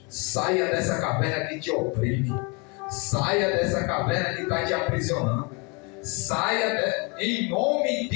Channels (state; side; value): quieter; right; 31.3 dB